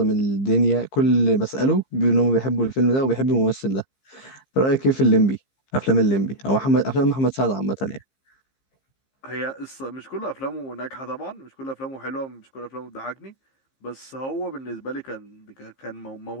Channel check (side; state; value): right; late; 15 ms